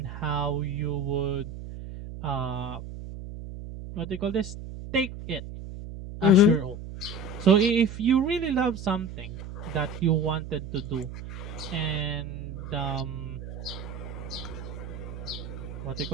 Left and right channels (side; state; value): right; noise; hum, 9 dB below the sound